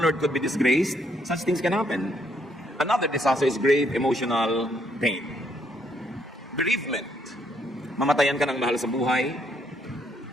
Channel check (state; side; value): normal; both; correlation 0.72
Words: could be disgraced. Such things can happen. Another disaster is grave emotional pain. Bereavement. Mamatayan ka ng mahal sa buhay.